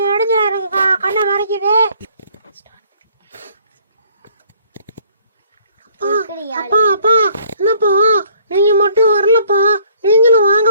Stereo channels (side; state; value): both; inverted; correlation -0.60